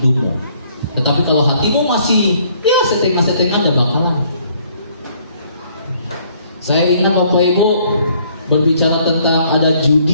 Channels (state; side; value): inverted; both; correlation -0.63